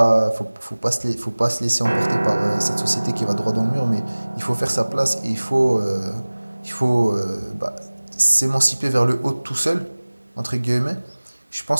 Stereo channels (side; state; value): both; inverted; correlation -1.00